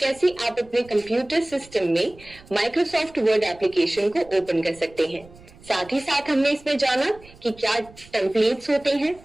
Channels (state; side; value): noise; right; rumble, 23 dB below the sound